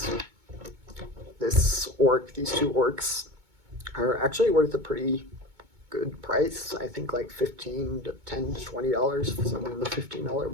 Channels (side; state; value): left; late; 2.2 ms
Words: these 2 orcs are actually worth a pretty good price. I think like $10 to $20, somewhere in the $15